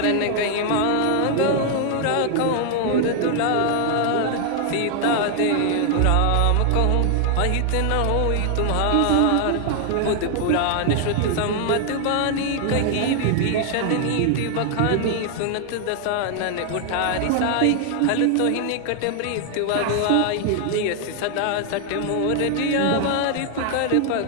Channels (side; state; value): both; different; correlation 0.00